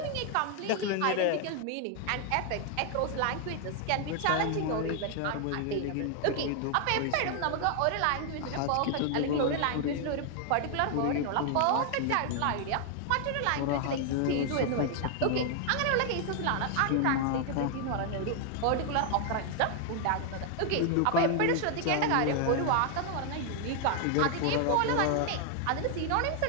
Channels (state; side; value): different; both; correlation 0.00